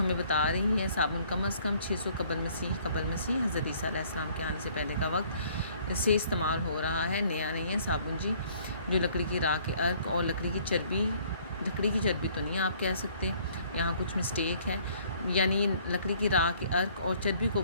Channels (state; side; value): inverted; both; correlation -0.59